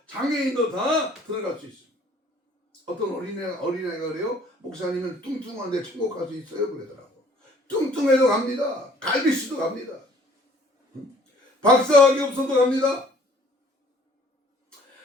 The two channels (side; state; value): both; normal; correlation 0.56